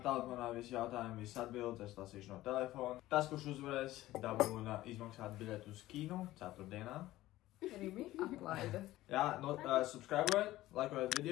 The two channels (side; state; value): right; quieter; 16.0 dB